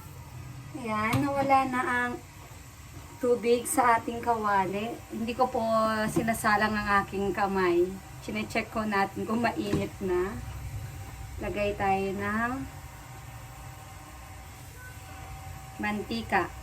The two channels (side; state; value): both; identical; correlation 1.00